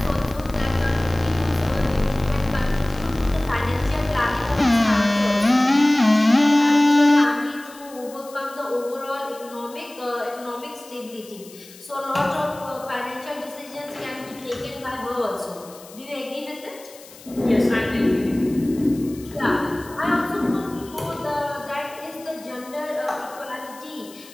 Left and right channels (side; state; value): left; noise; hiss, 20 dB below the sound